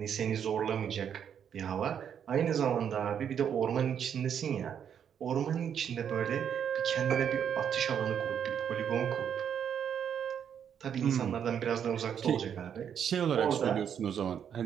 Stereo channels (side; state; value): left; quieter; 8.4 dB